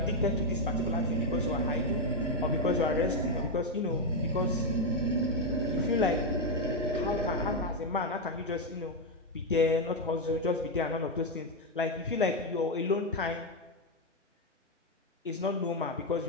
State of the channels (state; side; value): normal; both; correlation 0.03